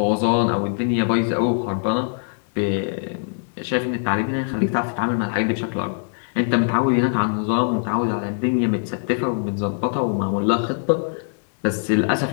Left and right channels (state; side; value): silent; right; digital silence